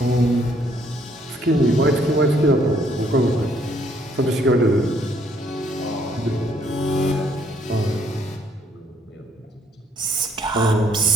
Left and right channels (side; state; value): both; normal; correlation 0.67